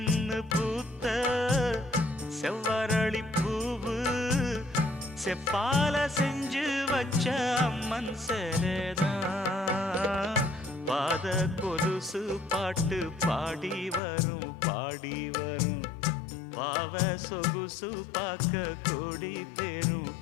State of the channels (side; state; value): right; drops out; at 14.0 s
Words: பூத்த செவ்வரளி பூவு செப்பால செஞ்சு வச்ச அம்மன் சேரதான் பாத கொலுசு பாட்டு பாடி வரும் பாடி வரும் பாவ சொகுசு பார்க்க கோடி பேரும்